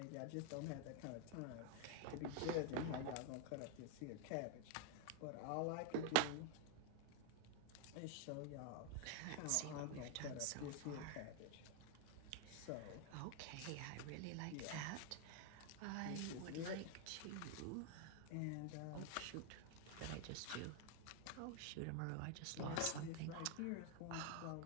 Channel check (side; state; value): both; different; correlation 0.01